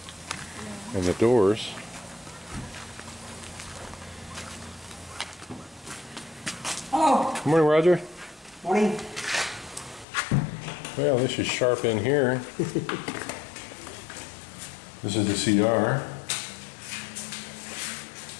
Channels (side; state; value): right; drops out; at 10.1 s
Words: and the doors. Hello. Good morning, Roger. Morning. Well, this is sharp in here. This is the CR.